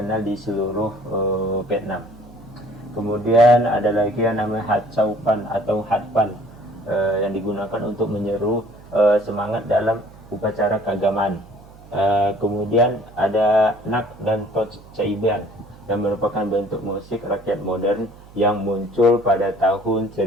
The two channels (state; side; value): noise; right; hum, 21 dB below the sound